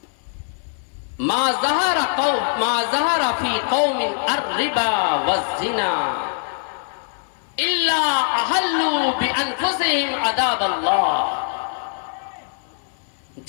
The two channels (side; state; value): right; silent; digital silence